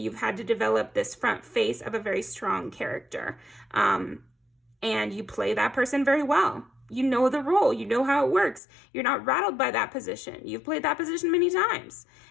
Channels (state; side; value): drops out; right; at 8.6 s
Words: you've had to develop this front face of a very strong character. And you play that person very well. You know the role, you know how it works. You're not rattled by that position. You've played that position many times.